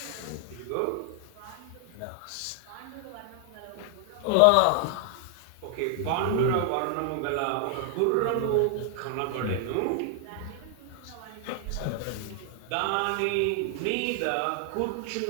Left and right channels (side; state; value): both; different; correlation 0.00